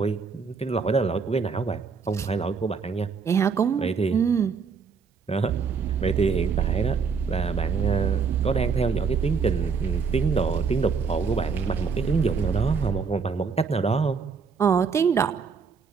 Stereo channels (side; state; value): left; quieter; 5.5 dB